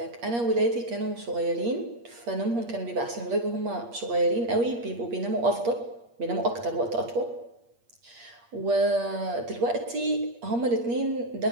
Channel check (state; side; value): late; left; 8.5 ms